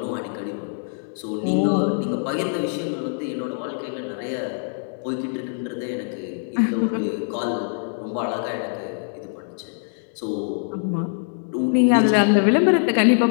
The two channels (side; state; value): right; silent; digital silence